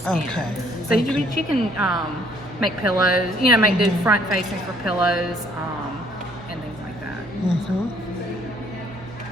Okay. So you can make pillows. Make do front facing for pillows, and things like that.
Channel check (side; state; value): both; normal; correlation 0.62